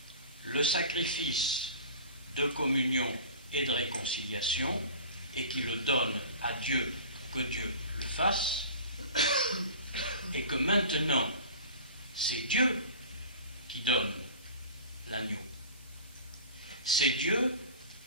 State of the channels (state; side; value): inverted; both; correlation -0.39